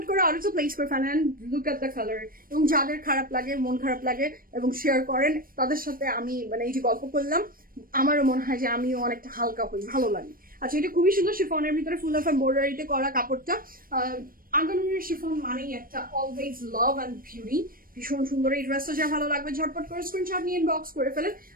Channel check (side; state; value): left; late; 0.41 ms